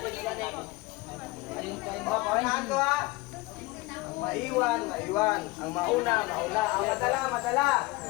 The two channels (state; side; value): quieter; right; 21.9 dB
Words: Paunahan ko ha. Ang maiwan, maiwan. Ang mauna, mauna. Ang madala, madala.